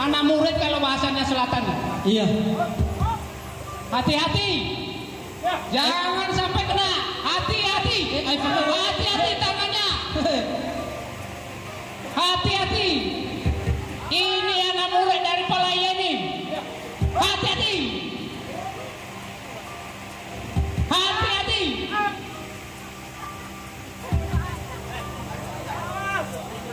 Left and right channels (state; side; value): identical; both; correlation 1.00